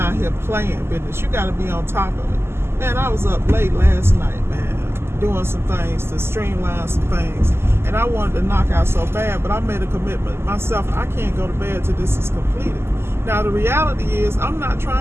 here playing business. You got to be on top of it. Man, I was up late last night, man, doing some things to streamline some things. And I wanted to knock out so bad, but I made a commitment myself. I can't go to bed till this is completed. Now, the reality is I'm not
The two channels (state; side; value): late; left; 0.12 ms